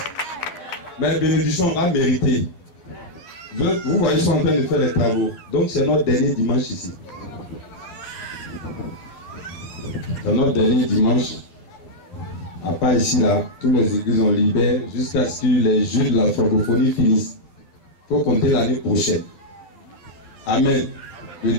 Mais bénédiction, on va mériter. Vous voyez, ils sont en train de faire les travaux. Donc c'est notre dernier dimanche ici. C'est notre dernier dimanche. À part ici, là, tous les églises ont libéré jusqu'à ce que les jeux de la francophonie finissent. Il faut compter l'année prochaine. Amen. Le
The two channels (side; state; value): right; late; 11 ms